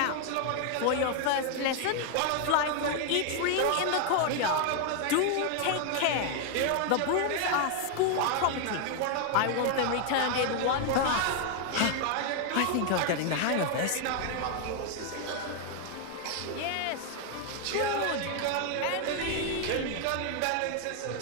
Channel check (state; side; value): different; both; correlation 0.00